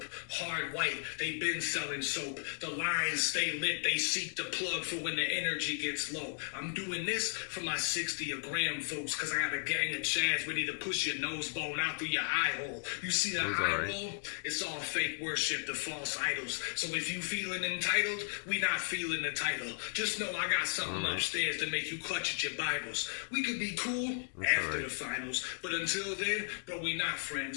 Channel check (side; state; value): right; silent; digital silence